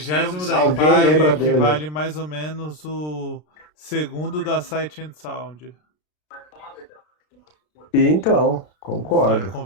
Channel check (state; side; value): late; right; 33 ms